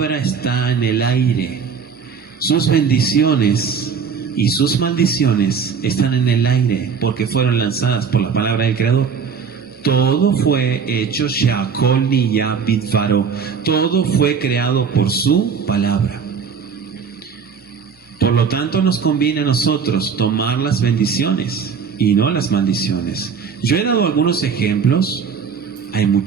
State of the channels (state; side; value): quieter; left; 6.2 dB